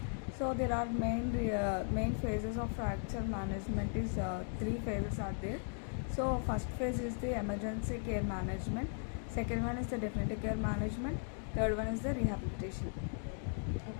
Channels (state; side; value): silent; right; 53 dB below the other